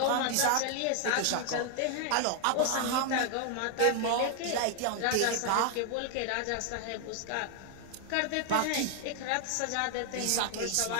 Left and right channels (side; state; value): both; different; correlation 0.00